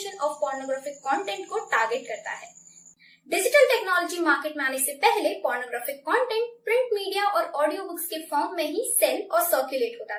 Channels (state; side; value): identical; both; correlation 1.00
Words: of pornographic content को टारगेट करता है। डिजिटल टेक्नोलॉजी मार्केट में आने से पहले पोर्नोग्राफिक कंटेंट प्रिंट मीडिया और ऑडियो बुक्स के फॉर्म में ही सेल और सर्कुलेट होता